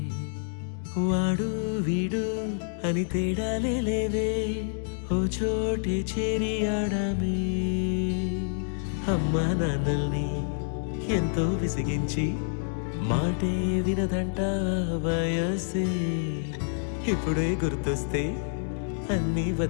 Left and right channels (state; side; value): silent; right; digital silence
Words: వాడు వీడు అని తేడాలే లేవే ఓ చోటే చేరి ఆడామే అమ్మా నాన్నల్ని ఎంతో విసిగించి మాటే వినదంట వయసే ఇప్పుడే గుర్తొస్తే అన్నీ